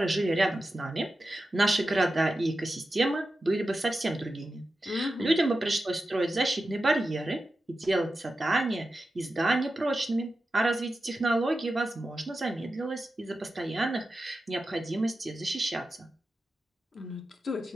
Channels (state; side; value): normal; both; correlation 0.92